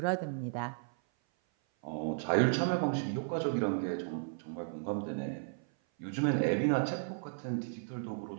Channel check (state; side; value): silent; left; 55 dB below the other